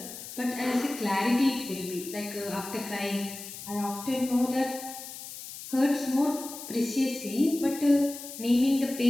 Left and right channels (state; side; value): noise; left; hiss, 12 dB below the sound